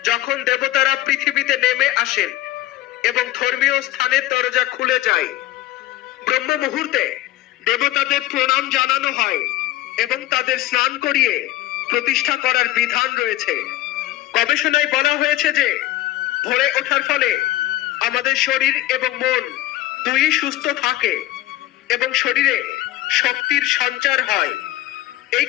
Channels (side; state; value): right; quieter; 15.5 dB